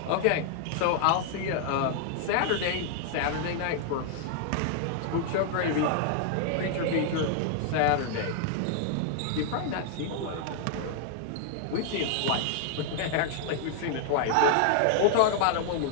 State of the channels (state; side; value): different; both; correlation 0.00